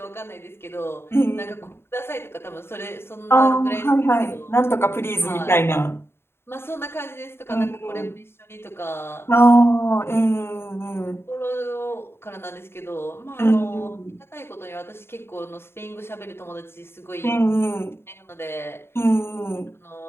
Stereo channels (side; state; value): right; late; 0.11 ms